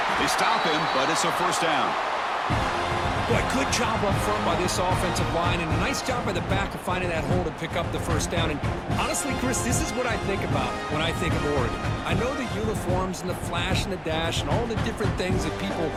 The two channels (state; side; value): identical; both; correlation 1.00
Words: They stop him, but it's a first down. Boy, good job up front by this offensive line, and a nice job by the back of finding that hole to pick up the first down. And honestly, Chris, this is what I think about when I think of Oregon. I know the uniforms and the flash and the dash and all the different things that people